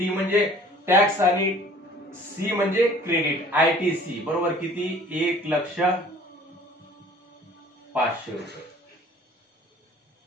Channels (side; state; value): both; normal; correlation 0.51